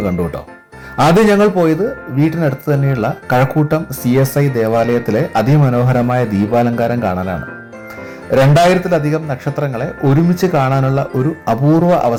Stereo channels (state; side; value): identical; both; correlation 1.00